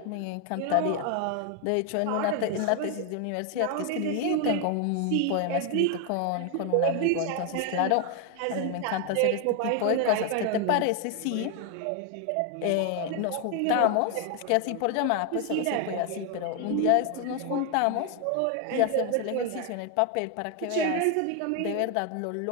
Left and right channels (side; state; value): both; different; correlation 0.01